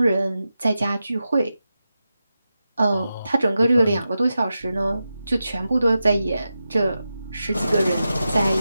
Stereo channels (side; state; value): both; inverted; correlation -0.91